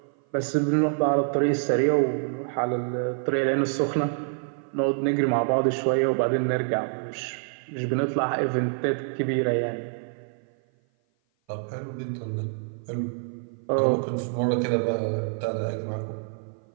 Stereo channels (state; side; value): silent; left; 55 dB below the other